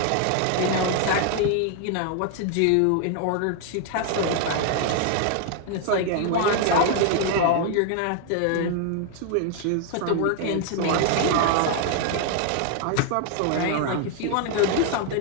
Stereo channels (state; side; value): different; both; correlation 0.00